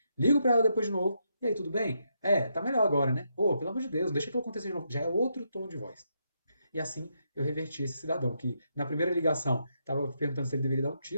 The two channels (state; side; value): inverted; both; correlation -0.80